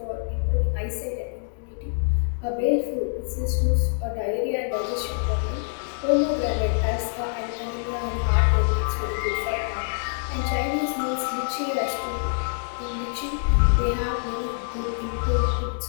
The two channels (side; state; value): right; silent; digital silence